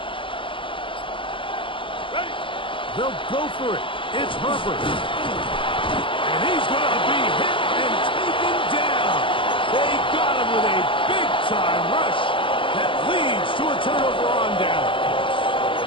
They'll go for it. It's Herbert. And he's going to be hit and taken down. They got him with a big-time rush that leads to a turnover on down.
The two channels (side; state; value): right; late; 0.25 ms